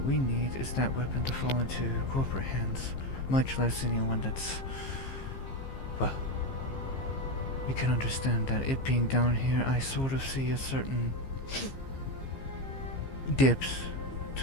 we need is that weapon to fall into corporate hands, much less anyone that's... well, you can understand that it being down here, I sort of see a certain dips,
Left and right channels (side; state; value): right; late; 15 ms